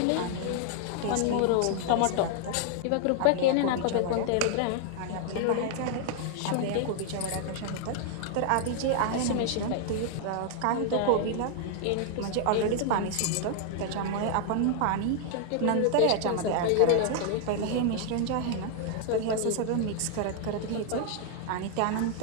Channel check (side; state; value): both; different; correlation 0.00